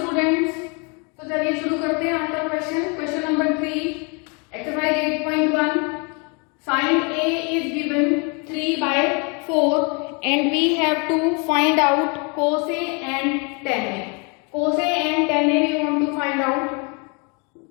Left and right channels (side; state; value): right; quieter; 33.7 dB